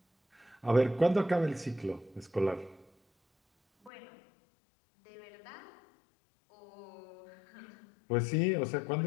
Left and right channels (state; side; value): drops out; right; at 3.9 s